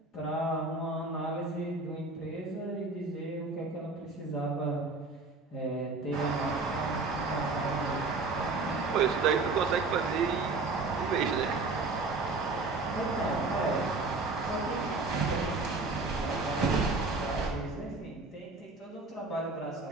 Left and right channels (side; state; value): left; quieter; 3.7 dB